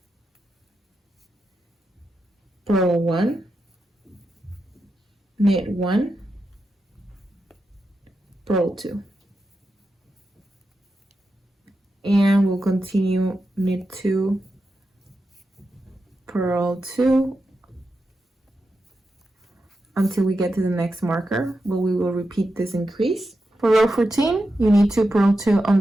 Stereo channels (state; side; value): normal; both; correlation 0.88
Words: purl 1, knit 1, purl 2, and we'll continue knit 2, purl 2 until we get to the next marker, but we will repeat this increase. For row 14, you need 2, purl 2